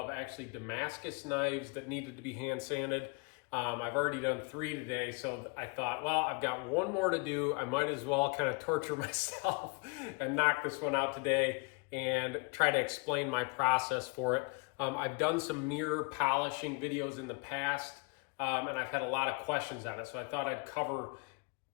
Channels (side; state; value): right; quieter; 31.7 dB